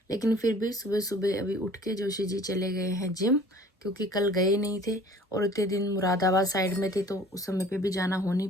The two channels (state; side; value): normal; both; correlation 0.49